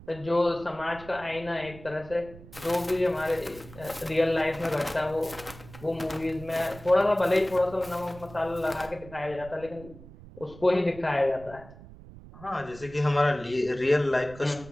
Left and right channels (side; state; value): right; noise; rumble, 18 dB below the sound